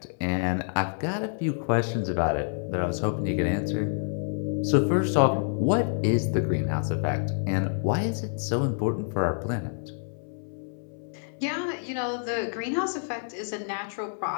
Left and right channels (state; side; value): silent; right; 60 dB below the other